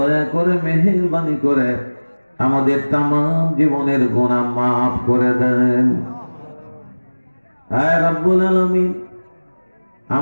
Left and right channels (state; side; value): inverted; both; correlation -1.00